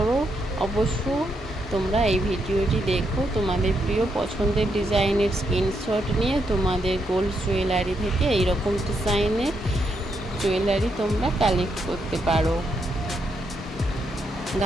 অবশ্য তোমরা এই ভিডিওটি দেখো। তোমাদের প্রিয় পছন্দের ডিজাইনের স্ক্রিনশট নিয়ে তোমাদের গোল্ড জুয়েলারি থেকে এইরকম ডিজাইনের জুয়েলারি তোমরা কালেক্ট করতে পারো।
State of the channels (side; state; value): both; normal; correlation 0.79